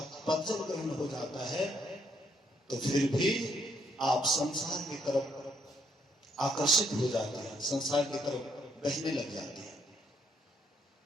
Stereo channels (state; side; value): normal; both; correlation 0.71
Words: पद जब ग्रहण हो जाता है तो फिर भी आप संसार की तरफ आकर्षित हो जाते हैं, संसार की तरफ बहने लग जाते हैं।